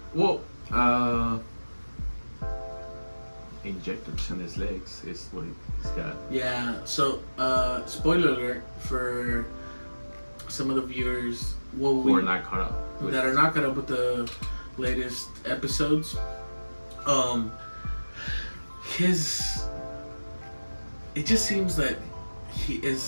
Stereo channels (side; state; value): both; inverted; correlation -1.00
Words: Well, injectors in his legs is what he's got. Yeah. So, spoiler alert for some of the viewers who are not caught up. That are not caught up with the latest episodes. It just seems that he